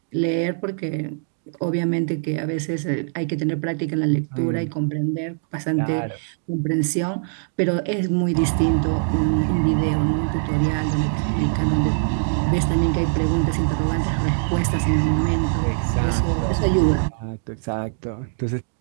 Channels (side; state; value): left; silent; digital silence